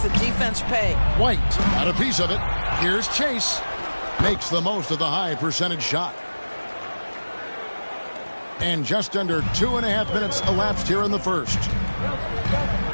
the defense pay. White got a piece of it. Here's Chase. Makes the most of the high percentage shot. And just under 2.5 minutes elapsed here in the first.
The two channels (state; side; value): inverted; both; correlation -1.00